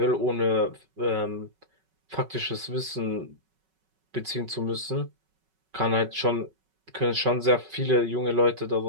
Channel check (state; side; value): late; left; 5.3 ms